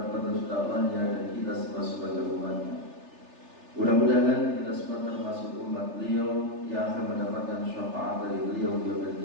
penerus dakwahnya, dan kita semua sebagai umatnya. Mudah-mudahan kita semua termasuk umat beliau yang akan mendapatkan syafaat dari beliau di yaumil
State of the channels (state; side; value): late; left; 3.3 ms